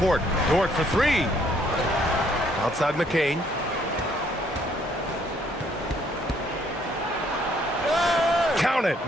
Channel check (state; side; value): normal; both; correlation 0.66